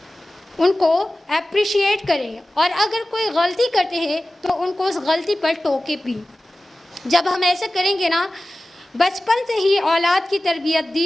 ان کو اپریشیٹ کریں، اور اگر کوئی غلطی کرتے ہیں تو ان کو اس غلطی پر ٹوکے بھی۔ جب ہم ایسے کریں گے نا، بچپن سے ہی اولاد کی تربیت،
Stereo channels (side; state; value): both; normal; correlation 0.96